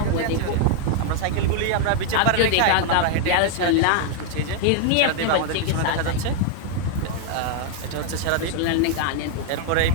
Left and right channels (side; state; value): both; different; correlation 0.00